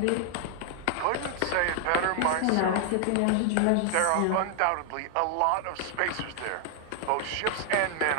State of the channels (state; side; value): different; both; correlation 0.00